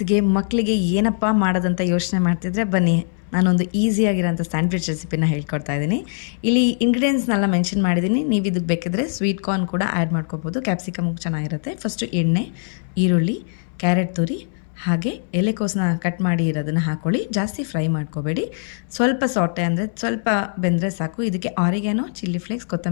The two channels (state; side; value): silent; right; 63 dB below the other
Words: ಮಕ್ಕಳಿಗೆ ಏನಪ್ಪ ಮಾಡೋದಂತ ಯೋಚನೆ ಮಾಡ್ತಿದ್ರೆ ಬನ್ನಿ ನಾನೊಂದು ಈಸಿಯಾಗಿರೋಂಥ ಸ್ಯಾಂಡ್ವಿಚ್ ರೆಸಿಪಿನ ಹೇಳ್ಕೊಡ್ತಾ ಇದ್ದೀನಿ. ಇಲ್ಲಿ ಇಂಗ್ರೀಡಿಯೆಂಟ್ಸ್ನೆಲ್ಲ ಮೆನ್ಷನ್ ಮಾಡಿದ್ದೀನಿ. ನೀವು ಇದಕ್ಕೆ ಬೇಕಿದ್ರೆ ಸ್ವೀಟ್ ಕಾರ್ನ್ ಕೂಡ ಆ್ಯಡ್ ಮಾಡ್ಕೋಬೋದು. ಕ್ಯಾಪ್ಸಿಕಮ್ ಚೆನ್ನಾಗಿರುತ್ತೆ. ಫಸ್ಟು ಎಣ್ಣೆ, ಈರುಳ್ಳಿ, ಕ್ಯಾರೆಟ್ ತುರಿ ಹಾಗೆ ಎಲೆಕೋಸನ್ನ ಕಟ್ ಮಾಡಿ ಇರೋದನ್ನು ಹಾಕ್ಕೊಳ್ಳಿ. ಜಾಸ್ತಿ ಫ್ರೈ ಮಾಡ್ಕೋಬೇಡಿ. ಸ್ವಲ್ಪ ಸಾಟೆ ಅಂದರೆ ಸ್ವಲ್ಪ ಬೆಂದರೆ ಸಾಕು. ಇದಕ್ಕೆ ಆರಿಗ್ಯಾನೋ, ಚಿಲ್ಲಿ ಫ್ಲೇಕ್ಸ್,